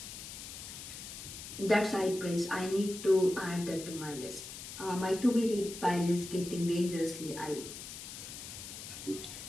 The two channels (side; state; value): left; noise; hiss, 10 dB below the sound